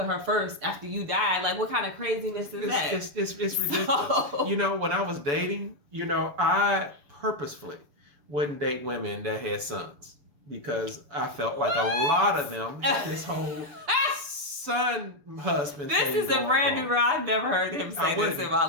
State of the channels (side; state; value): left; late; 6.8 ms